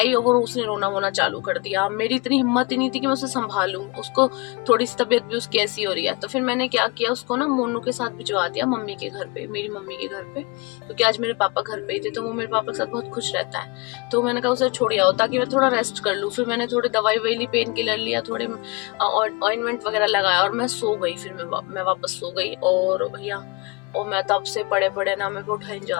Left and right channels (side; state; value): right; quieter; 26.3 dB